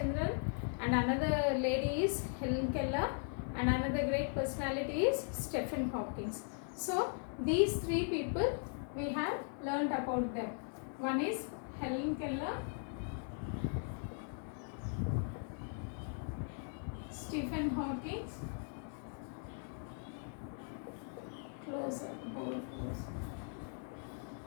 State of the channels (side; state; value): right; silent; 52 dB below the other